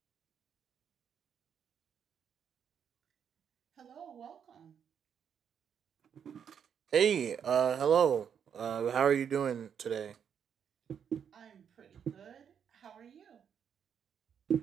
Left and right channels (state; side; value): quieter; left; 7.9 dB